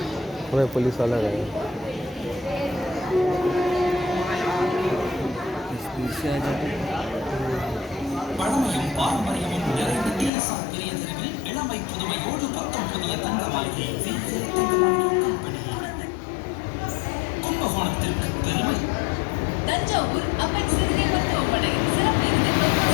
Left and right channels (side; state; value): right; drops out; at 10.3 s